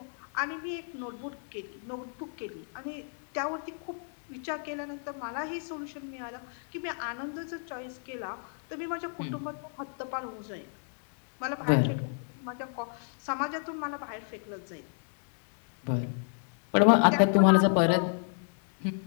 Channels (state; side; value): silent; right; 57 dB below the other